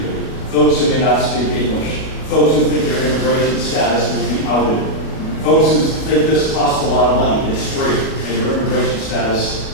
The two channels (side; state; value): right; late; 36 ms